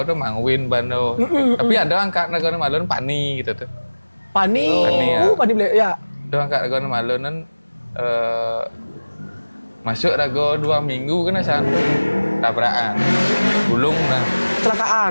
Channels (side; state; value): both; inverted; correlation -1.00